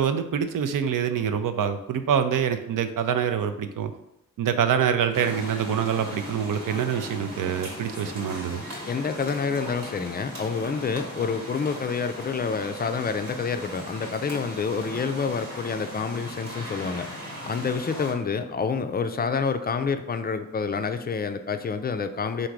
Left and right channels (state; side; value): normal; both; correlation 0.14